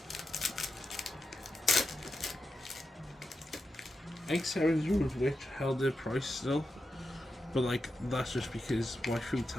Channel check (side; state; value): both; normal; correlation 0.88